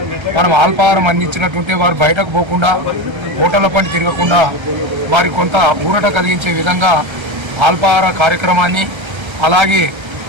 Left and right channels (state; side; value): late; left; 1.3 ms